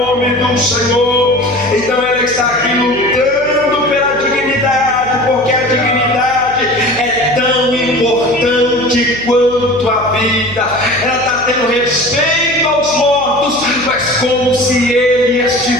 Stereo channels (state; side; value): noise; right; hum, 16 dB below the sound